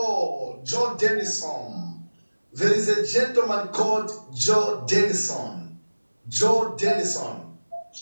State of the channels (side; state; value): both; inverted; correlation -1.00